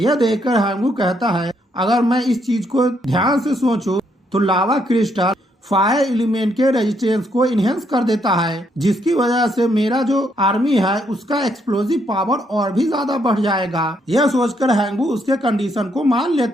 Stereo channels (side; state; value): both; normal; correlation 0.74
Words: देखकर हैंगू कहता है अगर मैं इस चीज को ध्यान से सोचूं तो लावा क्रिस्टल फायर एलिमेंट के रेजिस्टेंस को इनहेंस कर देता है, जिसकी वजह से मेरा जो आर्मी है उसका एक्सप्लोजिव पावर और भी ज्यादा बढ़ जाएगा। यह सोचकर हैंगू उसके कंडीशन को मान